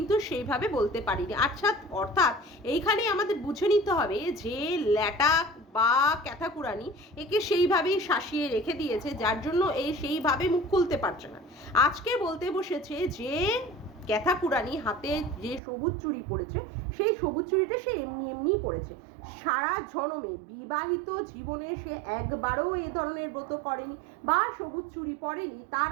সেইভাবে বলতে পারিনি। আচ্ছা, অর্থাৎ এইখানে আমাদের বুঝে নিতে হবে যে ল্যাটা বা ক্যাথাকুরানি একে সেইভাবেই শাসিয়ে রেখে দিয়েছে, যার জন্য এই সেইভাবে মুখ খুলতে পারছে না। আজকে বলতে বসেছে যে ক্যাথাকুরানি হাতে যে সবুজ চুড়ি পড়েছে, সেই সবুজ চুড়িটা সে এমনিই পড়েছে। সারা জনমে বিবাহিত জীবনে সে একবারও এ ধরনের ব্রত করেনি বা সবুজ চুড়ি পরেনি। তার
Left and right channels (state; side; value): drops out; left; at 15.6 s